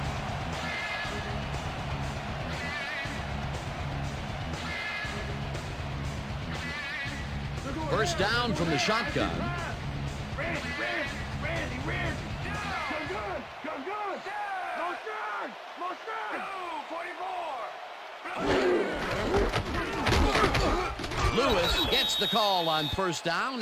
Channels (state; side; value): identical; both; correlation 1.00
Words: First down from the shotgun. Randy. Come good. No strike. 44. Lewis gets the call on first